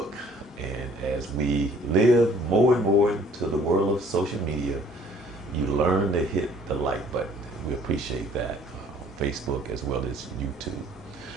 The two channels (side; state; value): both; normal; correlation 0.57